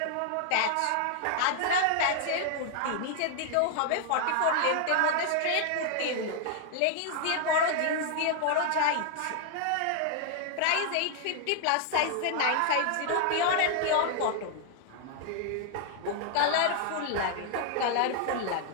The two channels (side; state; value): both; different; correlation 0.00